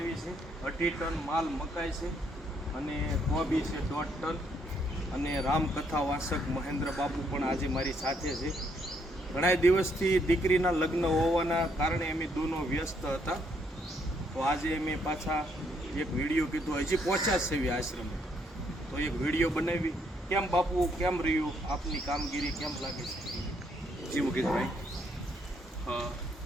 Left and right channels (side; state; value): both; normal; correlation 0.72